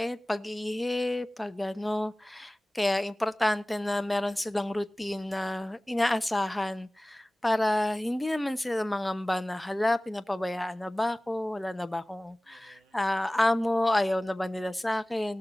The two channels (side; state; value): both; normal; correlation 0.98